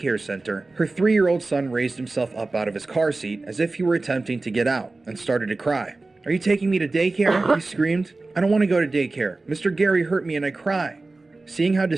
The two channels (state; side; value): quieter; left; 3.4 dB